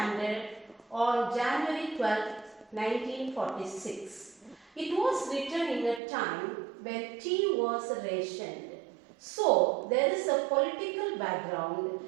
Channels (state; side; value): drops out; left; at 6.0 s